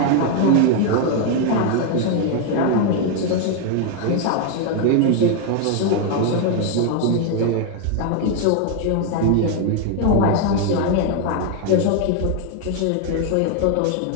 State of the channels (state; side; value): different; both; correlation 0.01